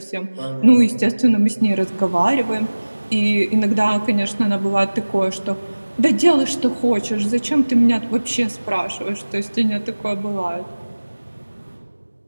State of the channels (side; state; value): both; inverted; correlation -1.00